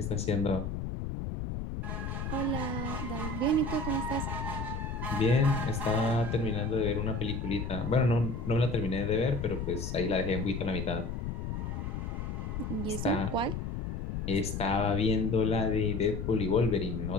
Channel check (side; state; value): left; noise; rumble, 4 dB below the sound